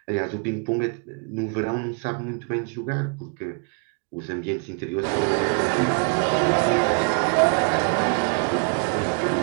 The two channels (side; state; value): left; quieter; 38.1 dB